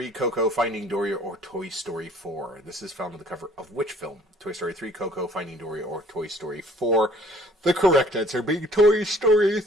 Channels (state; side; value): normal; both; correlation 0.56